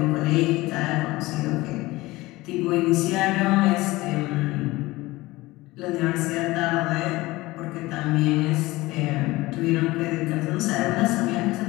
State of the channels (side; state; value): right; quieter; 19.9 dB